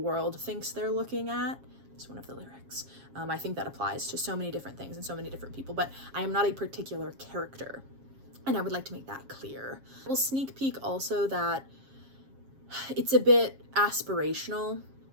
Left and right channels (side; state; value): left; late; 7.4 ms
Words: thinks they're looking at. It's one of the lyrics. I think that applies to so many different things and so many different people, but I am not a particular character. And I would like to make that clear. We'll sneak peek also that it's a bit aspirational.